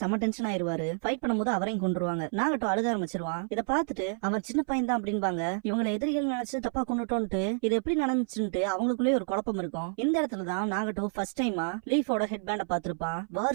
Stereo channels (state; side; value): silent; left; 58 dB below the other